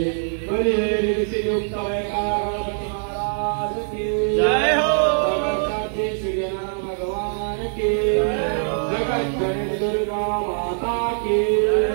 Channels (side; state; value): left; silent; 55 dB below the other